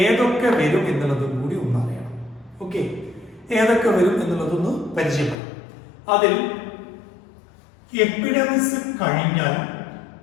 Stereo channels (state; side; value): drops out; right; at 5.4 s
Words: വരും എന്നുള്ളതും കൂടി ഒന്ന് അറിയണം. ഓക്കെ, ഏതൊക്കെ വരും എന്നുള്ളതൊന്ന് പരിചയപ്പെടാം. അതിൽ എപ്പിഡെമിസ് കഴിഞ്ഞാൽ